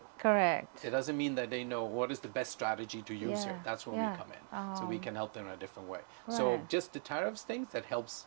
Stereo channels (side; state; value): left; silent; 52 dB below the other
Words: Correct. It doesn't mean that they know what is the best strategy to use here. That's when we come in. So we can help them in a different way. So just the tariffs things, that helps